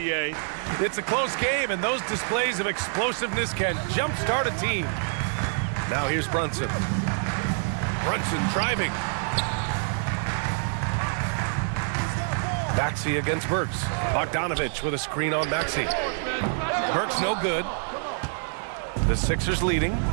It's a close game, and those displays of explosiveness can jumpstart a team. Now here's Brunson. Brunson driving. Maxey against Burks. Bogdanovic with a screen on Maxey. Burks no good. The Sixers leading.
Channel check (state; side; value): silent; left; digital silence